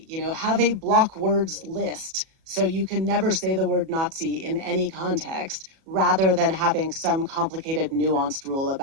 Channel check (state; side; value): late; left; 37 ms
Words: You know, have a block words list so you can never say the word Nazi in any context, rather than having some complicated, nuanced rule